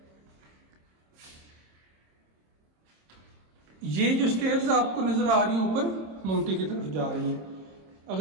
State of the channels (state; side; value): late; left; 26 ms